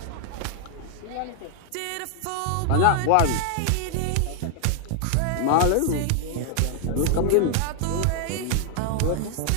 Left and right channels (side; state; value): both; different; correlation 0.00